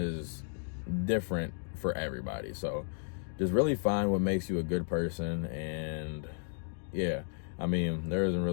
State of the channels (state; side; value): silent; right; digital silence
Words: different for everybody. So just really find what makes you a good person. And yeah, I mean, there isn't